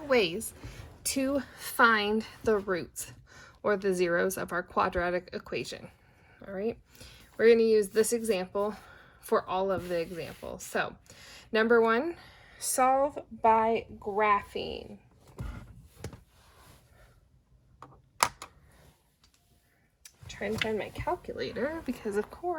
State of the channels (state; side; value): identical; both; correlation 1.00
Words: ways to find the roots or the zeros of our quadratic equation. All right. We're going to use this example for all of the examples. So, number 1, solve by graphing. Trying to find my calculator because, of